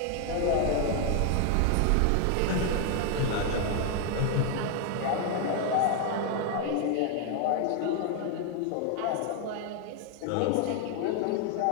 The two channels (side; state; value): both; different; correlation 0.00